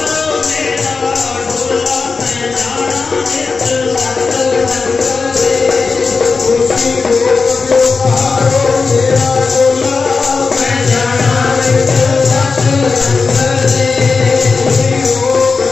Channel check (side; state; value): right; quieter; 4.5 dB